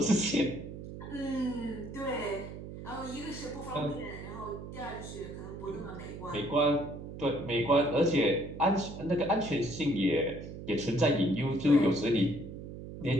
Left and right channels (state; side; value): noise; right; hum, 11 dB below the sound